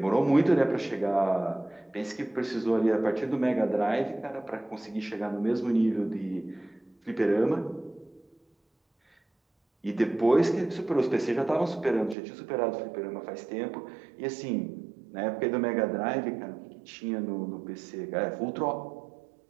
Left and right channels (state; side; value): drops out; left; at 12.2 s